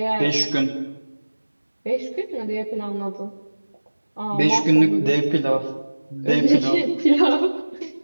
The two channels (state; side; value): inverted; both; correlation -1.00